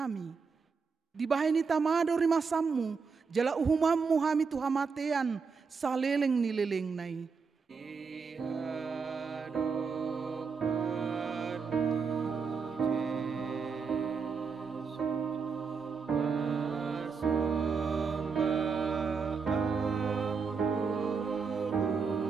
Dibahay ni tamado rimasammu, jala uhumammu hami tuhamatean, saleleng nileleng nai.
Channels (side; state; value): left; quieter; 5.3 dB